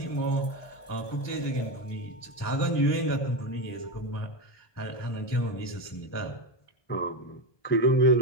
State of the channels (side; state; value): right; late; 1.2 ms